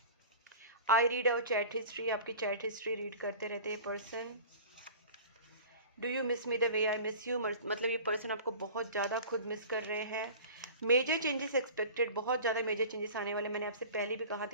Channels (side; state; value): both; inverted; correlation -0.39